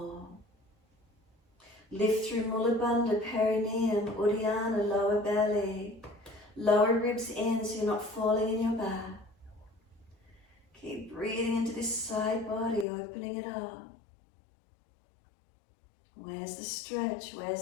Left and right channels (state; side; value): drops out; right; at 12.9 s